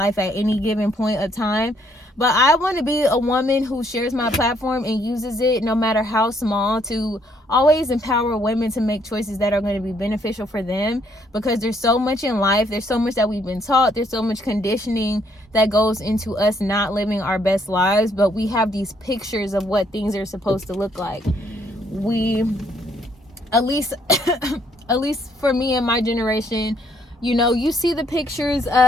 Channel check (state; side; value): normal; both; correlation 0.69